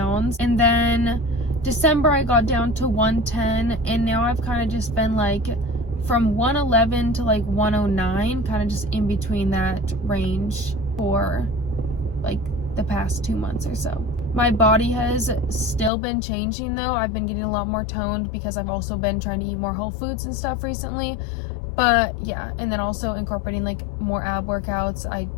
and then December I got down to 110, and now I've kind of just been like from 111 to like 109, kind of just in between that range for like the past 2 months or so. My body has still been changing though. I've been getting a lot more toned because I've also been trying to eat more whole foods and stuff recently. But yeah, and then also incorporating like more ab workouts.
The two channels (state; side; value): drops out; right; at 15.9 s